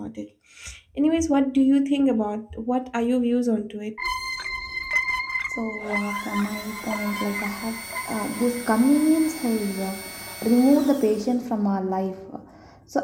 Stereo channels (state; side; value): identical; both; correlation 1.00